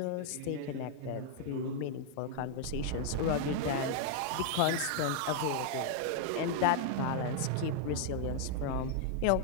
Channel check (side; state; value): both; different; correlation 0.00